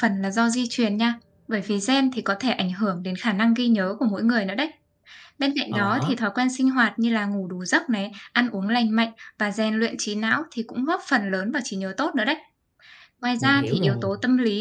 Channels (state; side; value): identical; both; correlation 1.00